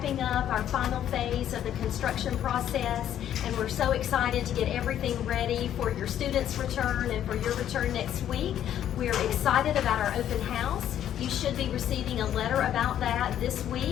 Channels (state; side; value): quieter; right; 10.7 dB